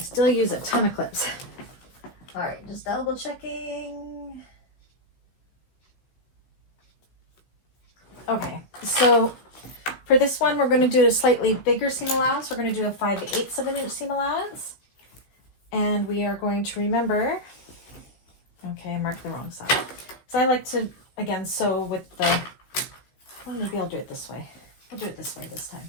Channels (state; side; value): late; right; 15 ms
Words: use a ton of clips. All right, just double checking. Okay, so for this one, we're going to do a slightly bigger seam allowance. We're going to do a 5/8 of an inch seam allowance. And we are going to remember, okay, I marked the wrong side. So I like to, again, sew with the, well, maybe I'll do it this way. I'll do it this way this